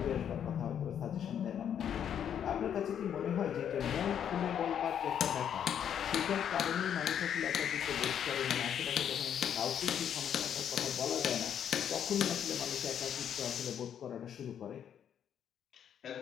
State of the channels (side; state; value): right; quieter; 9.0 dB